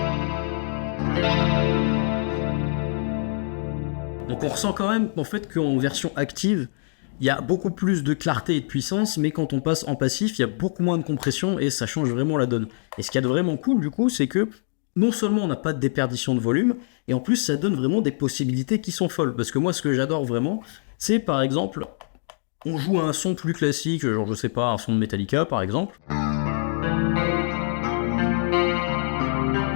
Donc on ressent quand même en fait qu'en version active, il y a beaucoup plus de clarté et de puissance, mais quand on passe en passif, il y a beaucoup moins de compression et ça change vraiment la donne. Et ce qu'il y a de vraiment cool du coup, c'est que non seulement on n'a pas de déperdition de volume, et en plus ça donne vraiment des possibilités qui sont folles. Parce que moi, ce que j'adore vraiment, c'est par exemple, on joue à un son plus classique, genre je sais pas, un son de Metallica par exemple.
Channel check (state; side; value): silent; right; digital silence